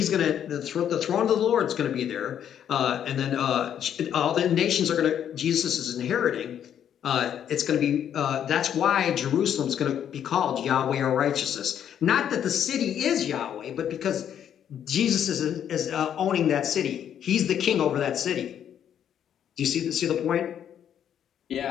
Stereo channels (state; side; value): quieter; right; 9.5 dB